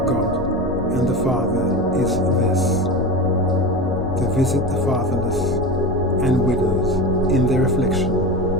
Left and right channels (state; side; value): noise; right; rumble, 12 dB below the sound